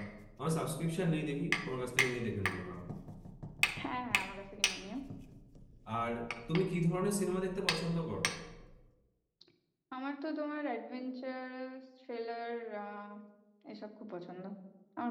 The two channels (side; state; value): both; identical; correlation 1.00